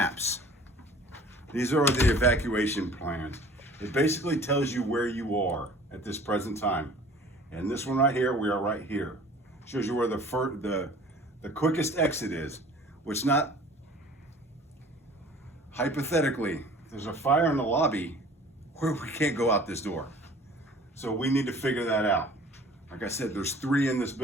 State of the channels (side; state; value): both; normal; correlation 0.48